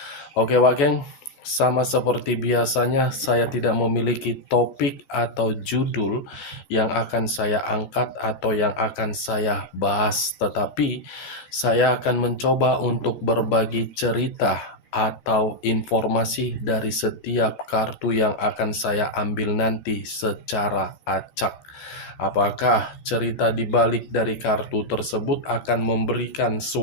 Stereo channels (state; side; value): late; right; 14 ms